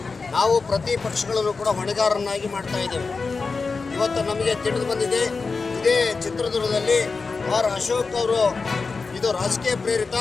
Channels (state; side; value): quieter; right; 4.4 dB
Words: ನಾವು ಪ್ರತಿ ಪಕ್ಷಗಳನ್ನು ಕೂಡ ಹೊಣೆಗಾರರನ್ನಾಗಿ ಮಾಡ್ತಾ ಇದ್ದೇವೆ. ಇವತ್ತು ನಮಗೆ ತಿಳಿದು ಬಂದಿದೆ, ಇದೇ ಚಿತ್ರದುರ್ಗದಲ್ಲಿ ಆರ್ ಅಶೋಕ್ ಅವರು ಇದು ರಾಜಕೀಯ ಪ್ರೇರಿತ,